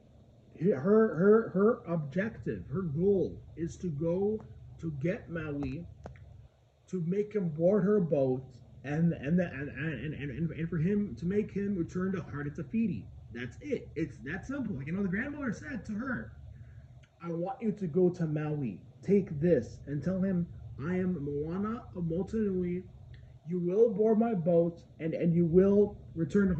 her objective, her goal is to go to get Maui, to make him board her boat, and for him to make him return to Heart of Tafiti. That's it. It's that simple. The grandmother said to her, "I want you to go to Maui. Take this and tell him I am Moana of Motunui. You will board my boat, and you will return to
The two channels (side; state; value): both; identical; correlation 1.00